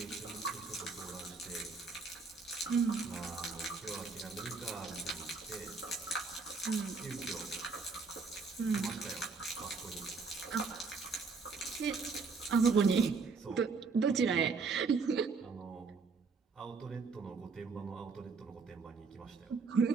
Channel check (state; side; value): quieter; left; 4.6 dB